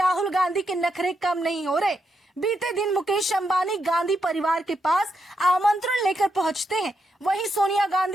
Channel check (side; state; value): both; normal; correlation 0.82